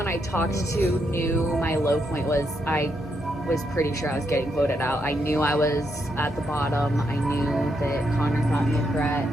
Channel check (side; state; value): both; normal; correlation 0.79